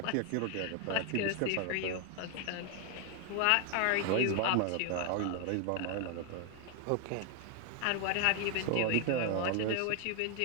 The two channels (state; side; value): different; both; correlation 0.00